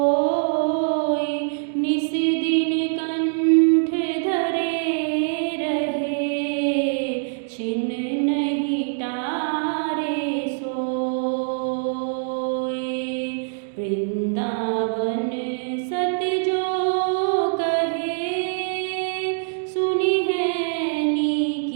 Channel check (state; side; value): silent; left; digital silence